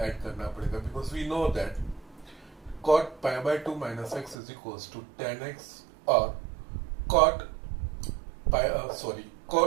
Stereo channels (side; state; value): left; drops out; at 4.4 s